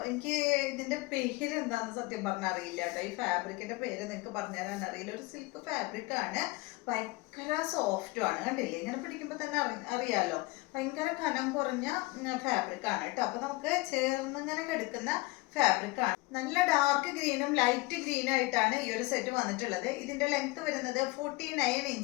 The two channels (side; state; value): right; quieter; 22.6 dB